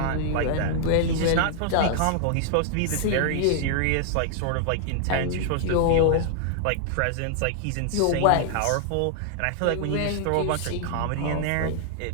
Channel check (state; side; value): different; both; correlation -0.01